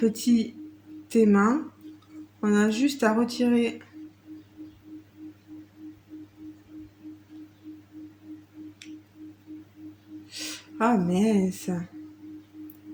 aimant. On a juste à retirer... Ah mince.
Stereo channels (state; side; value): identical; both; correlation 1.00